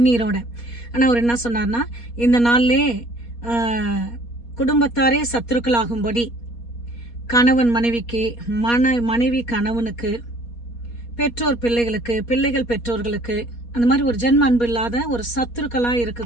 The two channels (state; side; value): late; right; 4.2 ms